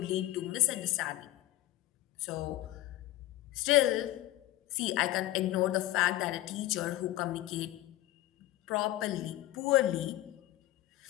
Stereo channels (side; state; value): right; quieter; 15.6 dB